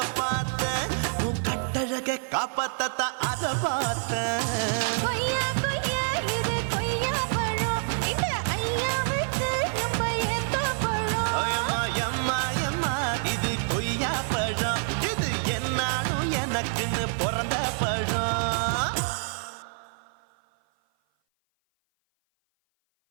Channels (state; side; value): silent; left; 56 dB below the other